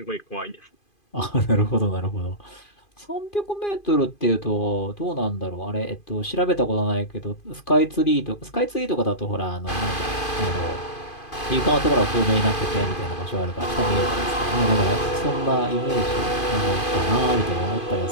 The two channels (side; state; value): right; late; 2.5 ms